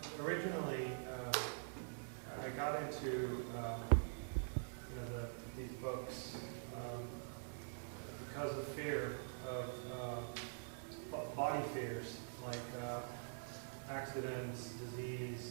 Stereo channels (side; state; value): left; silent; digital silence